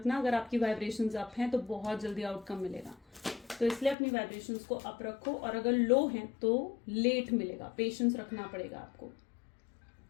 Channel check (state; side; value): drops out; right; at 4.0 s